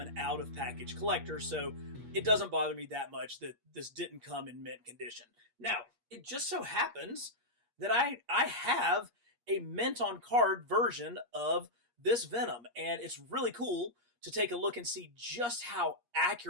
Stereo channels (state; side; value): late; left; 8.5 ms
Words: out-of-package collector, so it doesn't bother me that much that this didn't come in mint condition. Now, it just so happens that I have a mint on card version of this Venom, and it's really cool to take a look and see just how